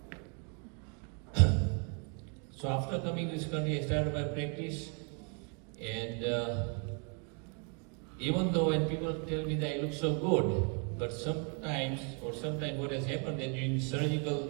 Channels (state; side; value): quieter; left; 38.4 dB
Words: So after coming to this country, I started my practice, and even though when people tell me that I look so good, but sometimes what has happened that during